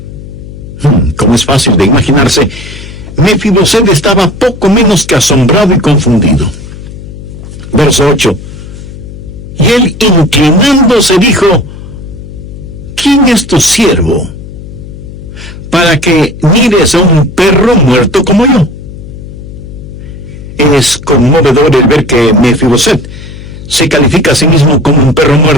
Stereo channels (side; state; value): left; noise; hum, 14 dB below the sound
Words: Como es fácil de imaginarse, Mefiboset estaba poco menos que asombrado y confundido. Verso 8. Y él, inclinándose, dijo: ¿quién es tu siervo para que mires a un perro muerto como yo? Es conmovedor el ver que Mefiboset se califica a sí mismo como un perro